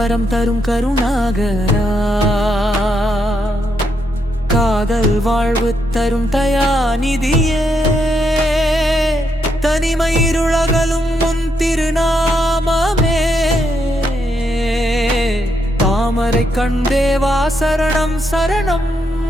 தரும் கருணாகரா, காதல் வாழ்வு தரும் தயாநிதியே, தனிமை இருளகலும் முன் திருநாமமே, தாமரை கண்டேவா சரணம் சரணம்.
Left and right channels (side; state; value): both; normal; correlation 0.79